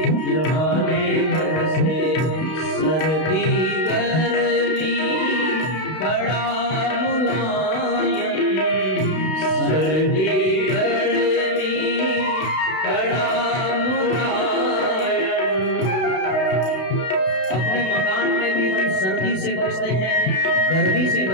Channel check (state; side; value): late; right; 32 ms